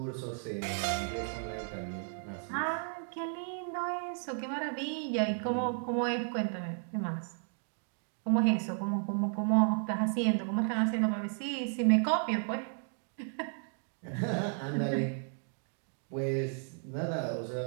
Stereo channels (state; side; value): silent; left; 55 dB below the other